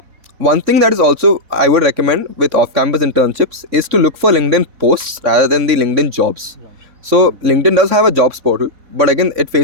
One thing that is also I would recommend with off-campus internships is to look for LinkedIn posts rather than the LinkedIn jobs. So LinkedIn does have a jobs portal, but again, it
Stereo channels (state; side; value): late; left; 3.6 ms